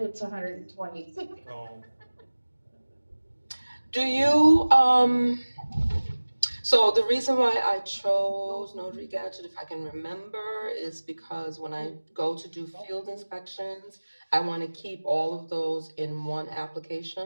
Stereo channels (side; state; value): both; inverted; correlation -1.00